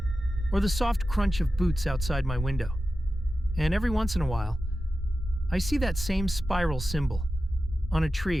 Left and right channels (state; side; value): normal; both; correlation 0.93